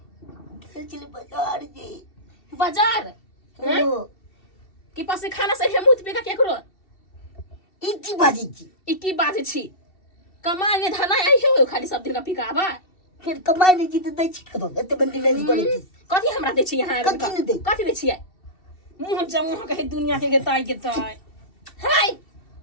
चले बाजार जी बाजार हैं कि पास खाना से मुत पे का केकरो इकी बाजी छी कमाई ने धना आई हो खाली सब दिन का पिकाबा फिर कमाई नहीं जीते दै छी कतो एते बंदी नहीं पड़े छी कथी हमरा दे छी यहां कथी दे छी मुंह जमुह कहे दुनिया के ताई हाय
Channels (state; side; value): late; right; 2.7 ms